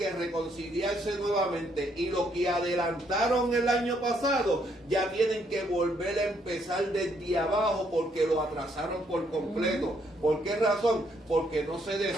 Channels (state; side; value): normal; both; correlation 0.71